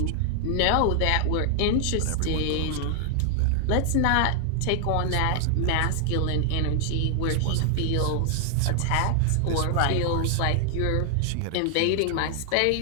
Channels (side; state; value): both; different; correlation 0.00